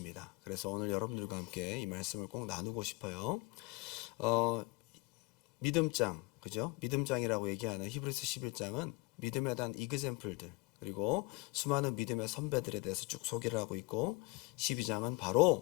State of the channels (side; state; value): right; quieter; 25.7 dB